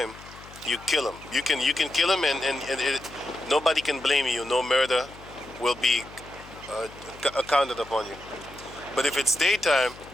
you kill him. You can kill him, and nobody can blame you. No murder will be accounted upon you. But if it's daytime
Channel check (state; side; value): noise; left; hum, 19 dB below the sound